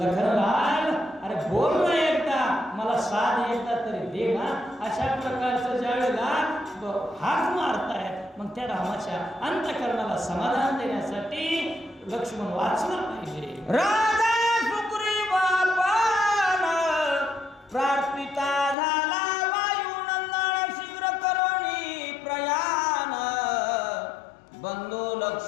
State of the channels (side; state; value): right; drops out; at 18.8 s